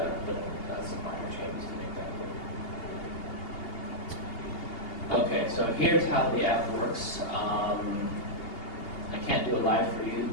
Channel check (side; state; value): right; late; 2.8 ms